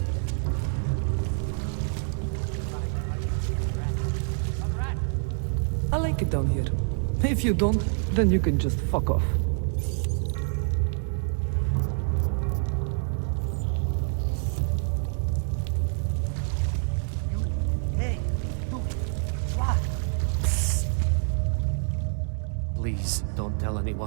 I like it down here. If you don't, then you can just fuck off. Hey, you, what? Please, don't tell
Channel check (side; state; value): left; silent; 60 dB below the other